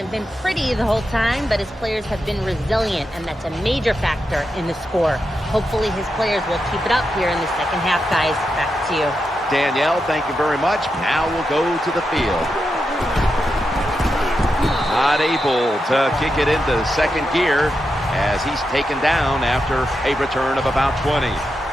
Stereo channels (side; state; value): both; normal; correlation 0.87